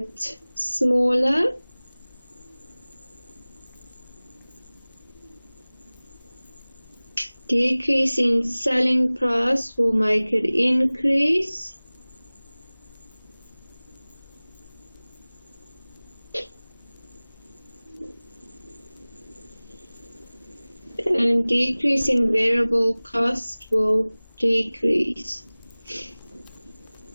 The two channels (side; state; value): both; inverted; correlation -1.00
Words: smaller. Decrease in selling price will make it increase. And decrease in variable cost will decrease.